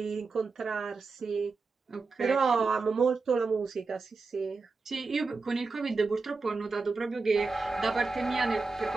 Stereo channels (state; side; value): quieter; left; 4.1 dB